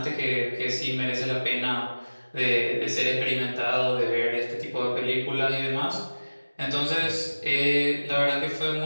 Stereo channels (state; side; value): inverted; both; correlation -1.00